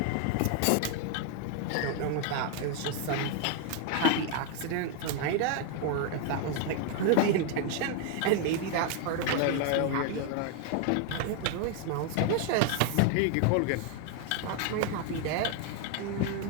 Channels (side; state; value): both; different; correlation 0.01